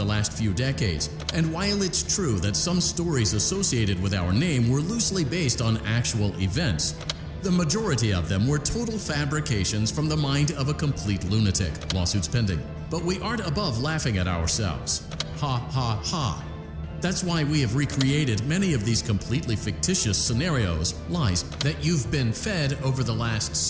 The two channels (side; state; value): both; identical; correlation 1.00